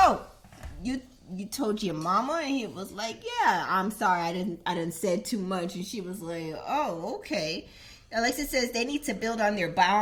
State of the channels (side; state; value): both; identical; correlation 1.00